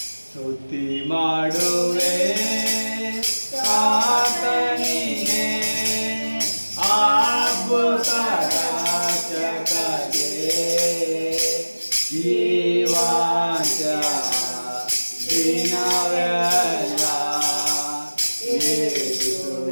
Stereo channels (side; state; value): both; inverted; correlation -1.00